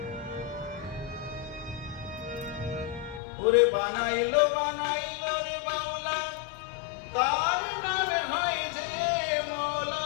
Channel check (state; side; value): drops out; right; at 3.2 s